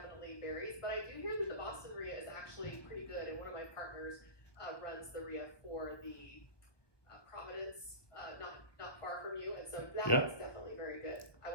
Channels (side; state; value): right; late; 1.2 ms